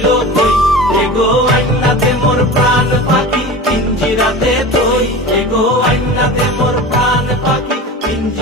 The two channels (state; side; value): normal; both; correlation 0.32